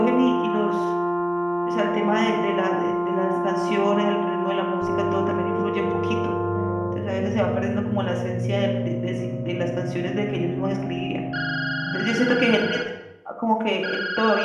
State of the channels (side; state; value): both; identical; correlation 1.00